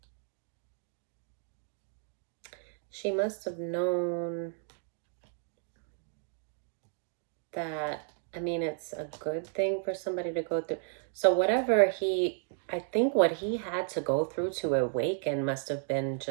must have known that, it's a good thing for somebody to go through. So whatever I think what he had to go through to awaken must have been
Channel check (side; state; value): left; silent; digital silence